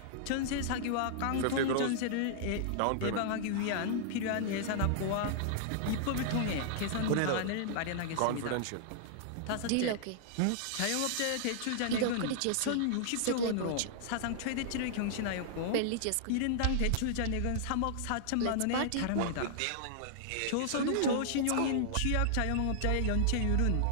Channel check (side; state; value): both; different; correlation -0.01